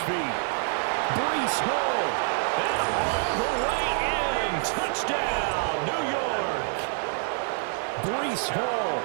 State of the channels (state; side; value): silent; left; 60 dB below the other